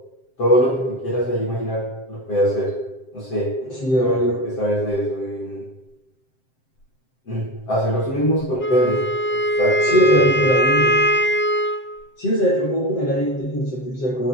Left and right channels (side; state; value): right; late; 7.7 ms